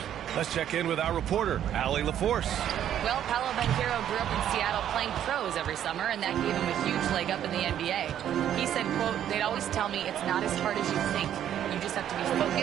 Let's check in with our reporter, Allie LaForce. Well, Paolo Banchero grew up in Seattle playing pros every summer, and that gave him a huge leg up in the NBA. He said, quote, "They'd always tell me it's not as hard as you think. You just have to be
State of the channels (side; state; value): left; quieter; 10.5 dB